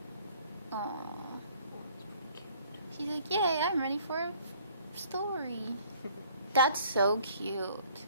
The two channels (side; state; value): both; inverted; correlation -0.57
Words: Aww. She's like, yay, I'm ready for a story. That's so cute.